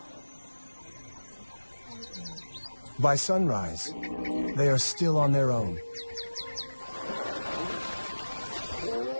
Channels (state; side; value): inverted; both; correlation -1.00